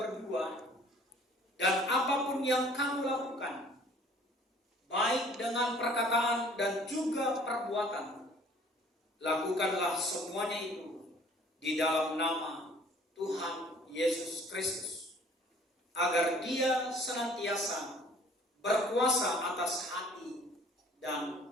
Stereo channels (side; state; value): both; normal; correlation 0.54